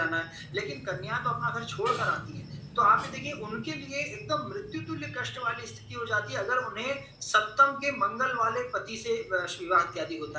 है, लेकिन कन्या तो अपना घर छोड़ कर आती है। तो आप ये देखिए, उनके लिए एकदम मृत्यु तुल्य कष्ट वाली स्थिति हो जाती है अगर उन्हें सप्तम के मंगल वाले पति से विवाह इत्यादि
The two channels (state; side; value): identical; both; correlation 1.00